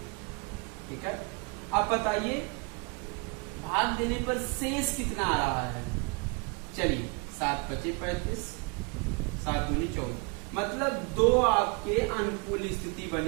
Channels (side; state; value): left; quieter; 32.5 dB